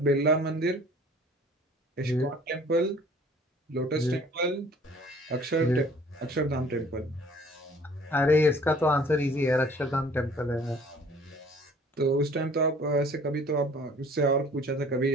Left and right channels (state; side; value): normal; both; correlation 0.52